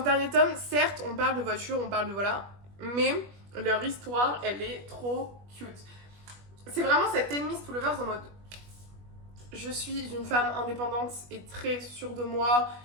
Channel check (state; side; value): late; left; 21 ms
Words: ce dernier tome, certes, on parle de voiture, on parle de voilà, mais leur histoire, elle est trop cute. C'est vraiment cette enemies to lovers en mode je suis une femme indépendante et très sûre de moi.